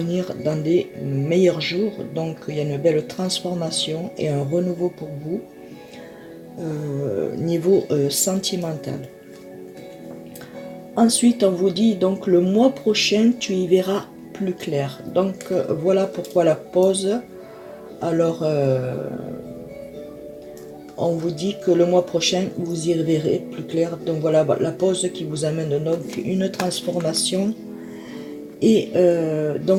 dans des meilleurs jours. Donc il y a une belle transformation et un renouveau pour vous niveau sentimental. Ensuite, on vous dit donc le mois prochain, tu y verras plus clair. Donc voilà pourquoi la pause. Alors, on vous dit que le mois prochain, vous y verrez plus clair. Donc voilà la pause qui vous amène donc une transformation. Et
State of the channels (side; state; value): both; identical; correlation 1.00